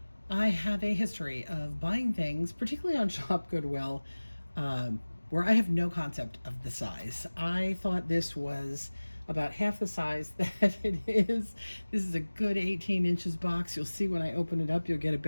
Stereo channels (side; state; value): both; inverted; correlation -1.00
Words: I have a history of buying things, particularly on Shop Goodwill, where I have no concept of the size. I thought this was about half the size that it is. This is a good 18 inches box. You'll see when I open it up, you'll get a